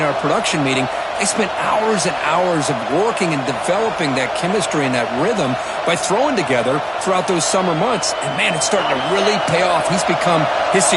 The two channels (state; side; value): identical; both; correlation 1.00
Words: our production meeting, they spent hours and hours of working and developing that chemistry and that rhythm by throwing together throughout those summer months. And, man, it's starting to really pay off. He's become his